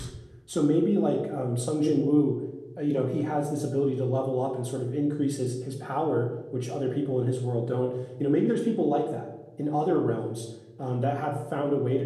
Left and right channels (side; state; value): both; identical; correlation 1.00